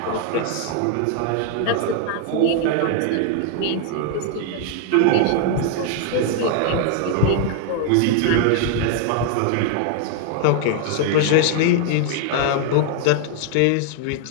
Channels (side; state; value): both; different; correlation 0.00